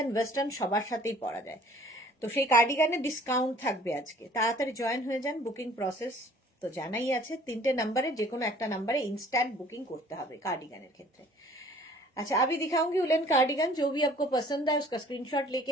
ওয়েস্টার্ন সবার সাথেই পরা যায়। তো সেই কার্ডিগানের ডিসকাউন্ট থাকবে আজকে, তাড়াতাড়ি জয়েন হয়ে যান। বুকিং প্রসেস তো জানাই আছে, 3টে নাম্বারে যে কোনো একটা নাম্বারে इंस्टेंट बुकिंग করতে হবে কার্ডিগানের ক্ষেত্রে। अच्छा, अभी दिखाऊंगी उलेन कार्डिगन। जो भी आपको पसंद है उसका स्क्रीनशॉट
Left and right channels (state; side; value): normal; both; correlation 0.53